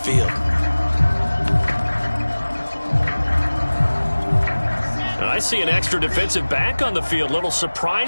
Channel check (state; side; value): inverted; both; correlation -1.00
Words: field. I see an extra defensive back on the field. Little